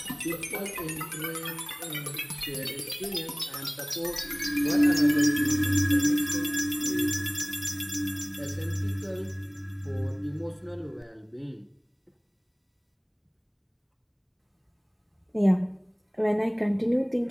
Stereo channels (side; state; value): both; identical; correlation 1.00